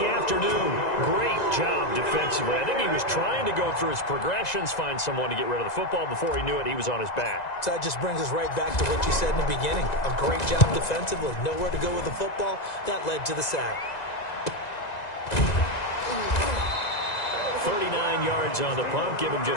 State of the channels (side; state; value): right; late; 1.9 ms